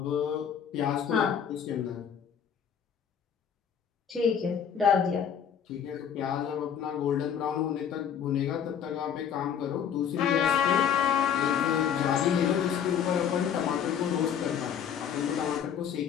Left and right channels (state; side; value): quieter; right; 8.2 dB